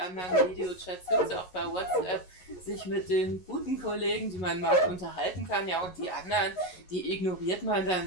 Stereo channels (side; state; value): right; late; 11 ms